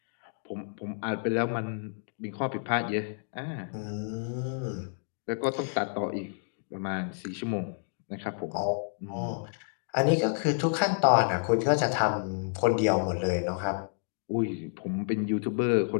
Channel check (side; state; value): right; silent; digital silence